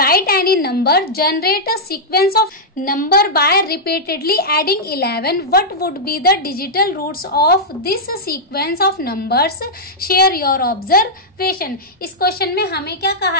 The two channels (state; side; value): normal; both; correlation -0.08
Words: any number generate a sequence of number by repeatedly adding 11। What would be the digital roots of this sequence of numbers, share your observation. इस question में हमें क्या